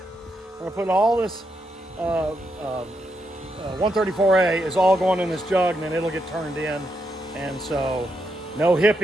gonna put all this 134A is all going in this jug, and then it'll get turned in. And so, no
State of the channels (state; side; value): normal; both; correlation 0.82